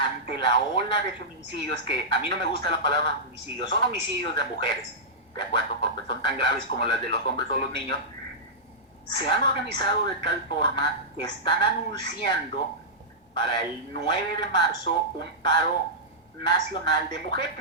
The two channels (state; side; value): normal; both; correlation -0.13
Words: la ola de feminicidios, que a mí no me gusta la palabra feminicidios, son homicidios de mujeres, de acuerdo, porque son tan graves como las de los hombres o los niños, se han organizado de tal forma que están anunciando para el 9 de marzo un paro nacional de